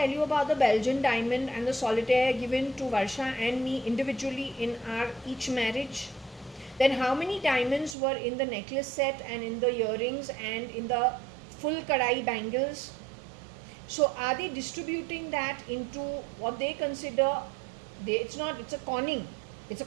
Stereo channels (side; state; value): left; drops out; at 8.0 s